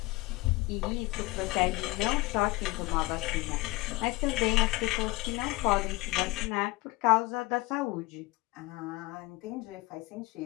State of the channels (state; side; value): quieter; right; 21.4 dB